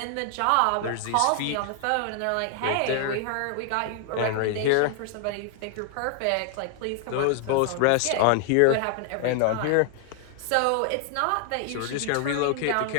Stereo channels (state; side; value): different; both; correlation 0.00